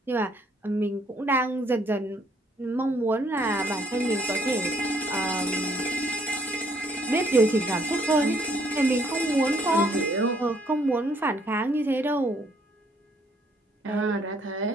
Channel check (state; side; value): normal; both; correlation 0.66